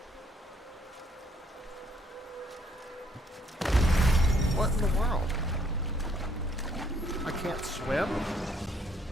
What in the world? I can't swim?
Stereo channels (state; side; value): normal; both; correlation 0.67